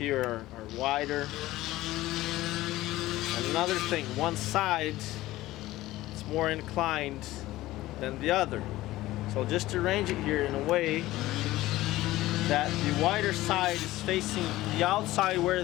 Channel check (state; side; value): quieter; right; 16.8 dB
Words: are wider. And another thing, one side is more inclined than the other. So just arrange it here in a way that the wider side is facing the outside